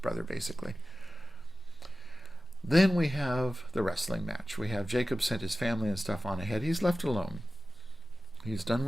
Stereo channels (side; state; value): both; normal; correlation 0.94